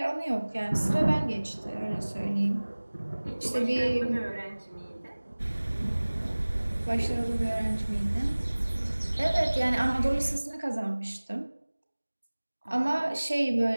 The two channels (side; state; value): both; inverted; correlation -1.00